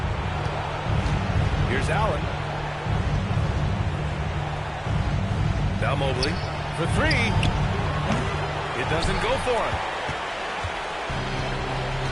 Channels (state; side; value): identical; both; correlation 1.00